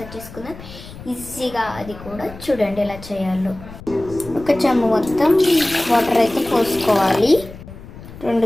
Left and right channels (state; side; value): noise; left; rumble, 16 dB below the sound